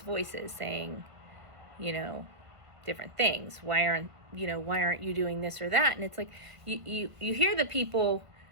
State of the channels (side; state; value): left; late; 1.5 ms